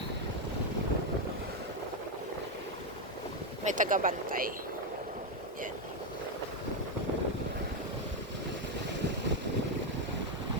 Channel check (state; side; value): normal; both; correlation 0.04